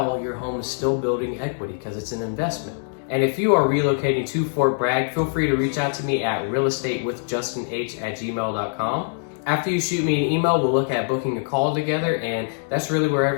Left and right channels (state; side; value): silent; right; digital silence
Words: your home is still building equity because it's an investment. And if you are relocating to Fort Bragg, feel free to reach out to me at realestatewithjustinh@gmail.com. After you shoot me an email, we'll look at booking a call together, and that's really where